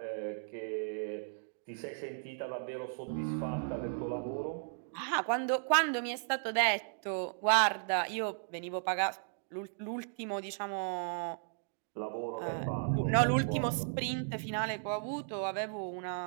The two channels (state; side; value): silent; left; digital silence